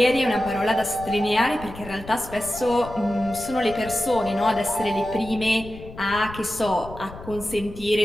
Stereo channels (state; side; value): noise; left; rumble, 15 dB below the sound